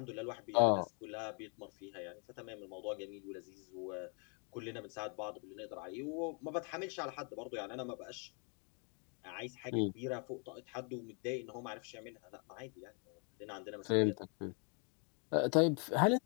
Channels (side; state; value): right; quieter; 37.4 dB